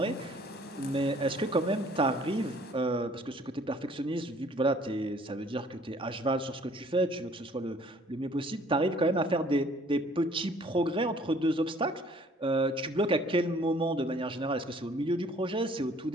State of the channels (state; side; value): normal; both; correlation 0.57